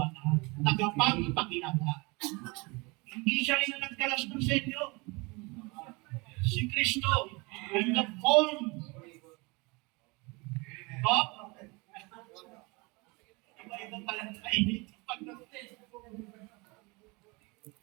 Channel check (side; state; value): left; quieter; 27.1 dB